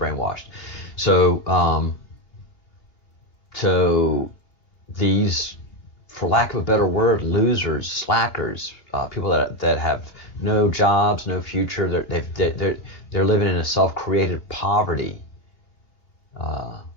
So these, for lack of a better word, losers, slackers, people that have no jobs, no future, they're living in a self-created poverty.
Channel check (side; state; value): right; late; 2.9 ms